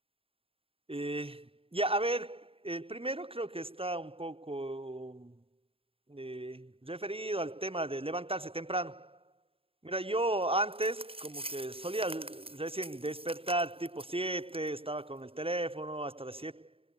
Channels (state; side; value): late; left; 0.27 ms